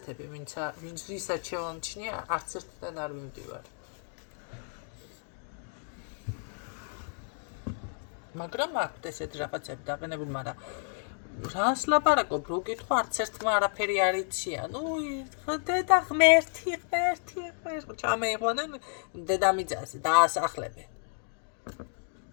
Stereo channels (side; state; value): right; silent; 57 dB below the other